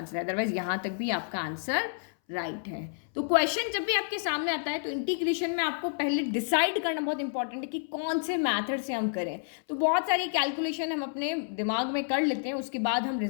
है, अदरवाइज यहाँ तक भी आपका आंसर राइट है। तो क्वेश्चन जब भी आपके सामने आता है तो इंटीग्रेशन में आपको पहले डिसाइड करना बहुत इंपॉर्टेंट है कि कौन से मेथड से हम करें। तो बहुत सारी कैलकुलेशन हम अपने दिमाग में कर लेते हैं, उसके बाद हम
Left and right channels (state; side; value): silent; right; 58 dB below the other